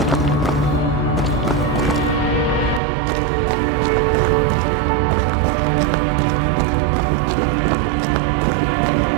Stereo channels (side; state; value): left; drops out; at 2.8 s